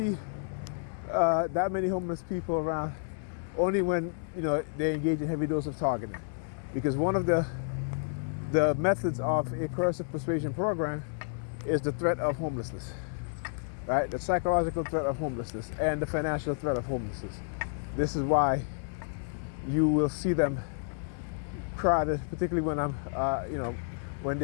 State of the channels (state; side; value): silent; right; digital silence